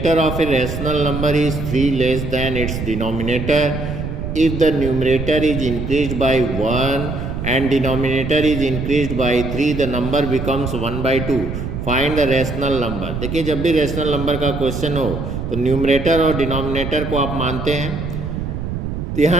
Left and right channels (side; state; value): right; noise; rumble, 5 dB below the sound